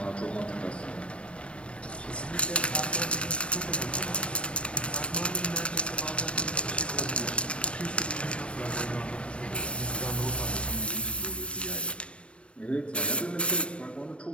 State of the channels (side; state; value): right; late; 0.060 ms